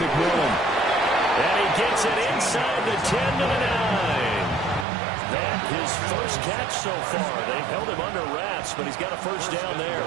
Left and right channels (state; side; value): drops out; left; at 4.9 s